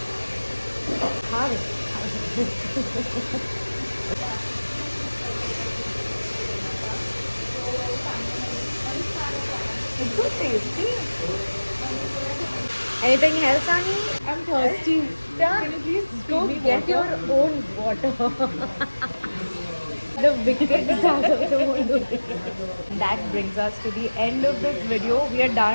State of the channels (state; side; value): inverted; both; correlation -1.00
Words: Have it. It's so tasty. Anything else, Ani? I'm thirsty. Can you please Go feed me get your water? own water. The wicked Zaz also won't do this. That brings us to the end of this video. We are